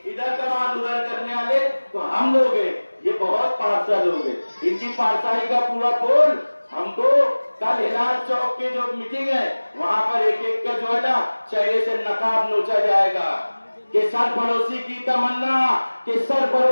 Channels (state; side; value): inverted; both; correlation -1.00